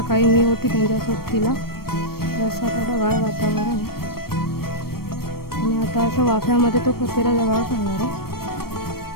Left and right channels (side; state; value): right; late; 0.94 ms